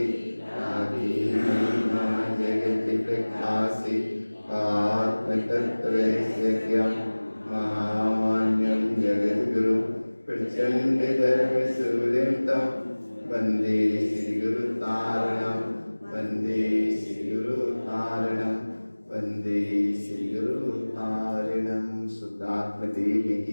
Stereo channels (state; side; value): inverted; both; correlation -1.00